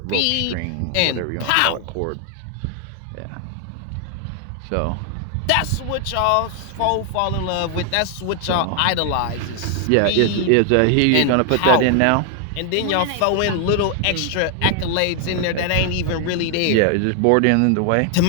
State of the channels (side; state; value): both; different; correlation 0.00